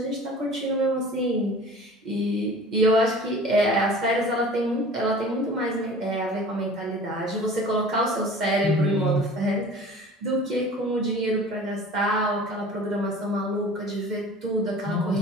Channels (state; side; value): normal; both; correlation 0.43